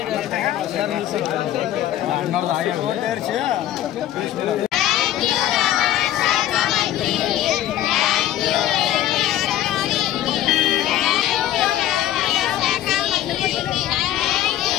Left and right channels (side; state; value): right; quieter; 12.7 dB